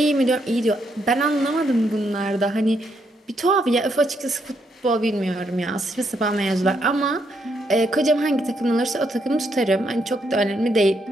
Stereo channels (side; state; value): both; normal; correlation 0.76